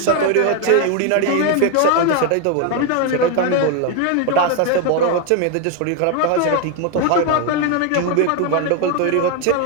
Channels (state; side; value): different; both; correlation 0.01